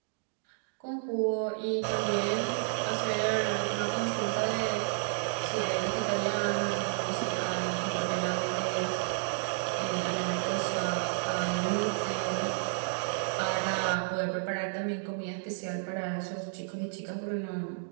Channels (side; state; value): left; silent; digital silence